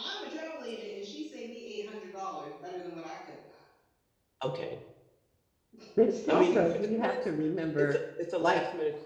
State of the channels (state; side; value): identical; both; correlation 1.00